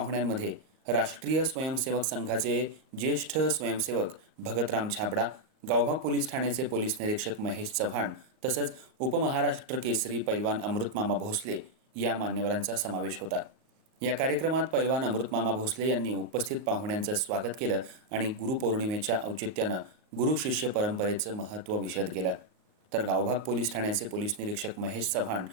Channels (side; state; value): left; late; 38 ms